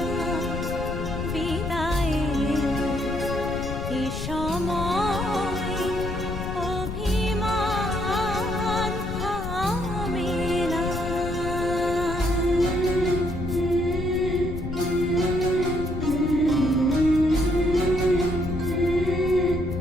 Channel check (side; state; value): left; noise; rumble, 6 dB below the sound